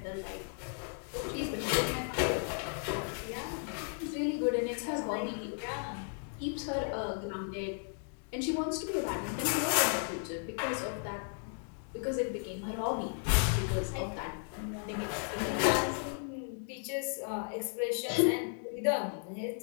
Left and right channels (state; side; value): silent; right; 55 dB below the other